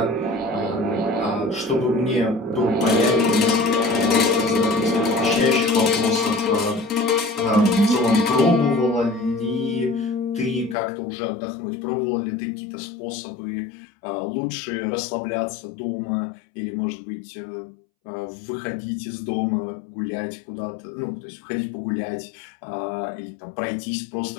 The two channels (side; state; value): right; drops out; at 10.8 s